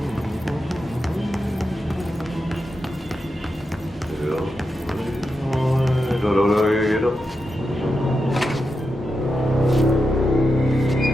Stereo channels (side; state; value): both; normal; correlation 0.88